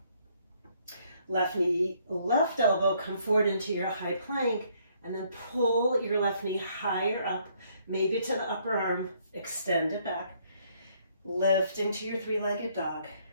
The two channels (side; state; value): both; inverted; correlation -0.67